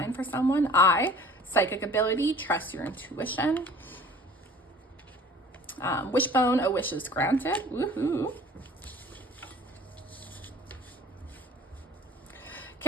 for someone. Psychic ability, trust your intuition. Wishbone, a wish is granted. Woohoo.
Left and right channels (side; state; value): both; normal; correlation 0.47